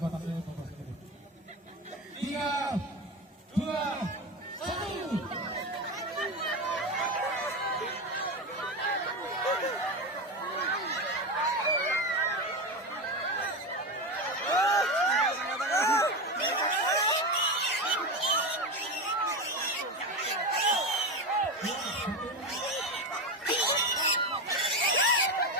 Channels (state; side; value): normal; both; correlation 0.18